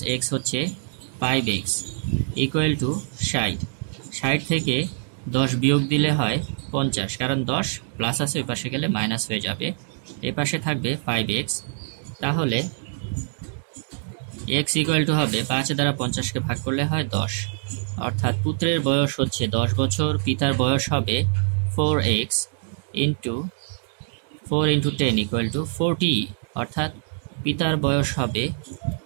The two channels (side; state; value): left; silent; 62 dB below the other